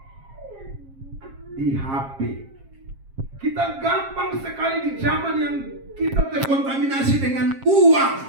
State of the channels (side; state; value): left; late; 7.4 ms